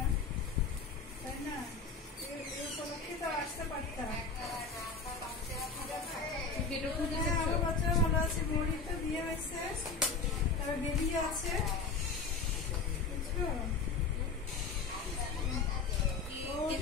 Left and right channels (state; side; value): quieter; right; 4.6 dB